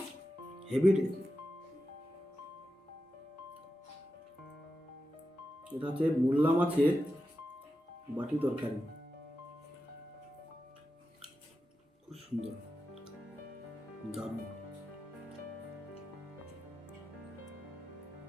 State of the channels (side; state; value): both; normal; correlation 0.90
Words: হেভি। এটা হচ্ছে মোল্লা মাছের বাটি তরকারি, খুব সুন্দর, দারুণ।